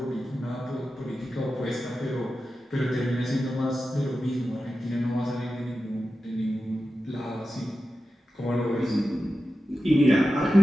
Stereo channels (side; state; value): both; normal; correlation 0.92